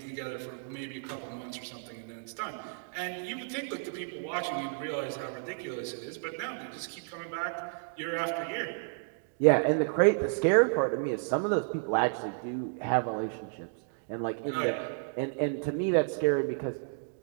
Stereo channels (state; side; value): silent; left; digital silence